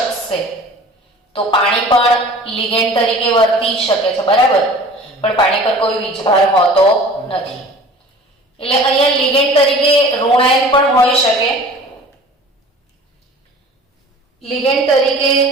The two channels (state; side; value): normal; both; correlation 0.44